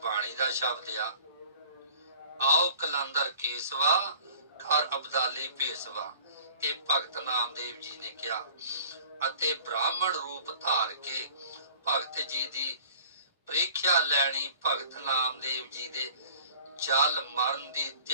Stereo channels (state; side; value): inverted; both; correlation -0.49